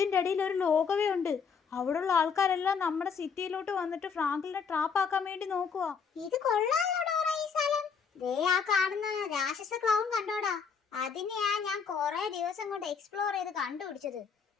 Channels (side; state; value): right; quieter; 6.1 dB